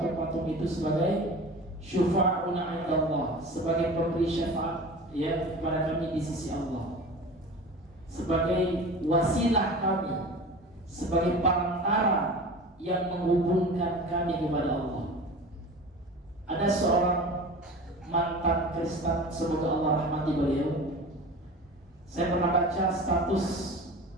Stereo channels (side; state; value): both; normal; correlation 0.35